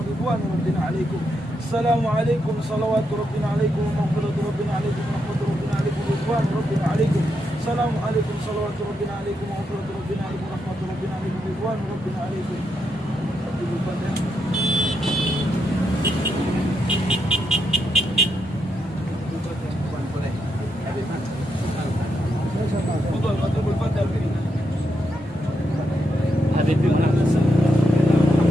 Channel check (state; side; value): normal; both; correlation 0.82